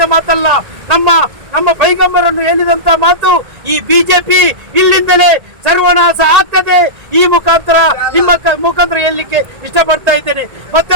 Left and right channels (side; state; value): left; late; 1.9 ms